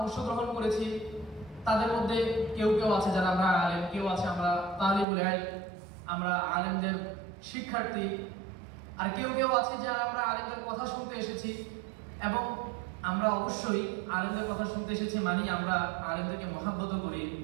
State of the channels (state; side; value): drops out; left; at 5.1 s